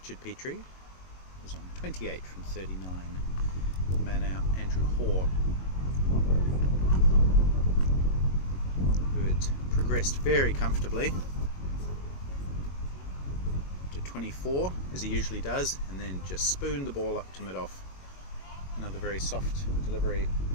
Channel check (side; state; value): right; late; 22 ms